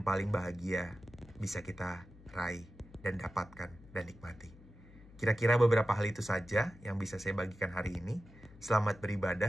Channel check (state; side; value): noise; left; hum, 21 dB below the sound